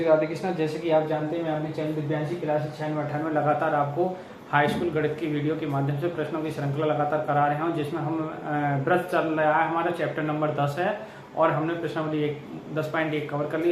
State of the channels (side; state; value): both; identical; correlation 1.00